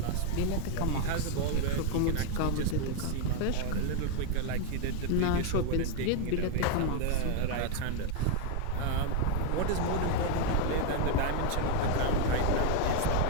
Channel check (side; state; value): both; different; correlation 0.01